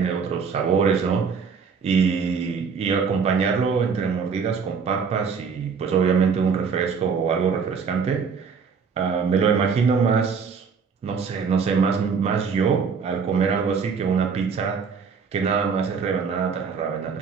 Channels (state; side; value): quieter; left; 5.7 dB